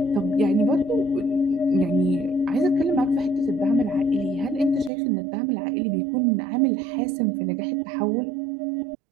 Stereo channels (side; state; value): left; drops out; at 4.9 s